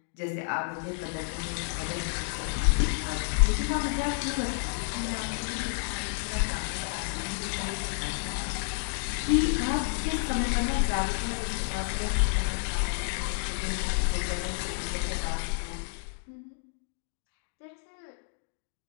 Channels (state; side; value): silent; right; digital silence